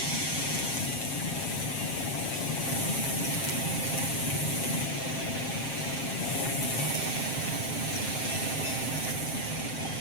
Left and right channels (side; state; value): right; late; 7.5 ms